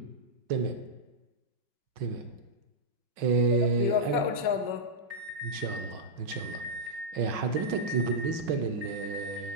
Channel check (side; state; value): left; late; 5.4 ms